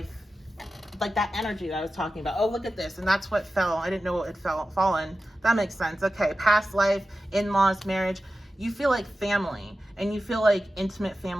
like that energy that I was talking about. Oh, look at this. And that's what fell. I didn't know it had fallen. That makes sense. Okay, past life, in-laws, marriage. You feel like family, and you feel like intimate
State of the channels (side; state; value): both; normal; correlation 0.93